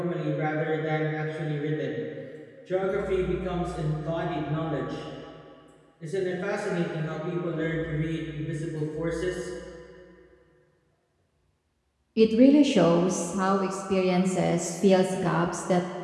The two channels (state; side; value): identical; both; correlation 1.00